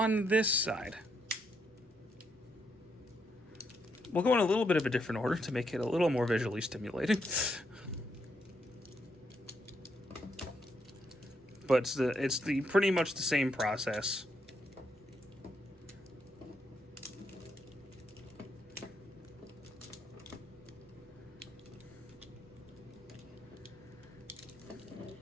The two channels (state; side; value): normal; both; correlation 0.77